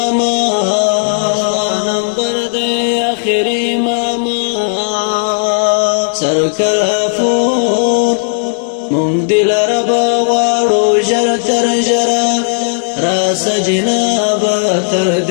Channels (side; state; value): right; silent; digital silence